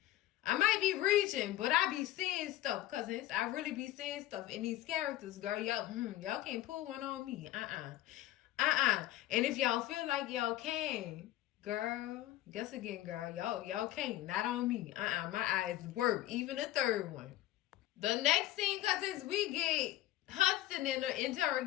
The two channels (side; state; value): right; quieter; 15.0 dB